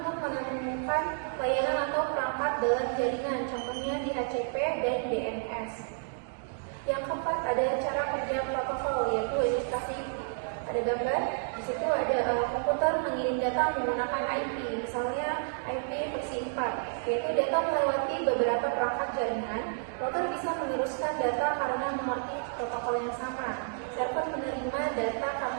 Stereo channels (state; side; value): silent; left; digital silence